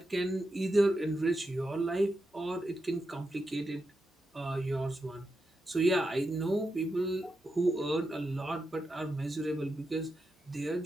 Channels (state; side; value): normal; both; correlation 0.87